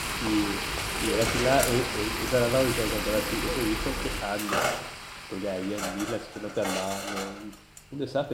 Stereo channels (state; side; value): identical; both; correlation 1.00